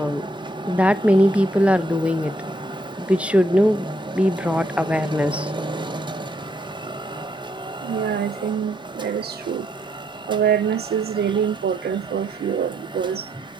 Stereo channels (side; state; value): both; normal; correlation 0.73